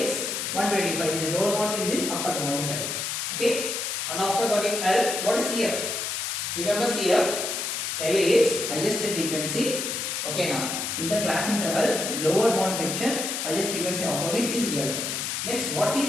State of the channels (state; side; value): noise; left; hiss, 2 dB below the sound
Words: is 125. This is lower boundary, this is upper boundary side. Okay, and after getting L, what is CF? Remember CF, L is highest frequency. Okay, now in the class intervals, lower bound section, highest frequency opposite is L. Next, what